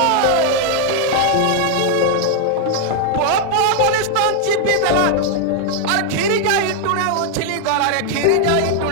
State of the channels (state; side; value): different; both; correlation 0.00